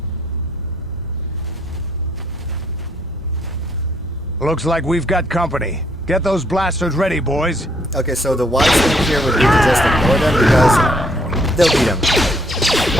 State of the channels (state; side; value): normal; both; correlation 0.68